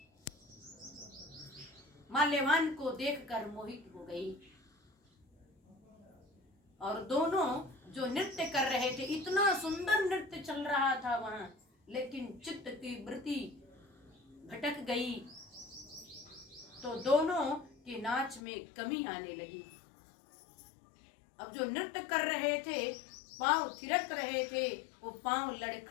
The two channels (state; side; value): drops out; right; at 18.4 s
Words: माल्यवान को देखकर मोहित हो गई, और दोनों जो नृत्य कर रहे थे, इतना सुंदर नृत्य चल रहा था वहां, लेकिन चित्त की वृत्ति भटक गई तो दोनों के नाच में कमी आने लगी। अब जो नृत्य कर रहे थे, पांव थिरक रहे थे, वो पांव